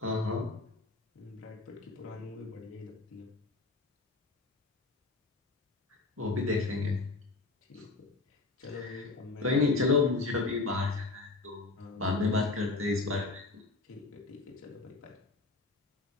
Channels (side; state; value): right; quieter; 3.5 dB